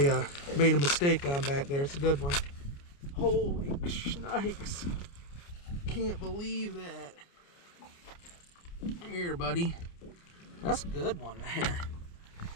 made a mistake on back there. It's a good one. Holy shnikes. Can't believe that. Come here, buddy. That's a good one there.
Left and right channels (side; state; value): right; late; 29 ms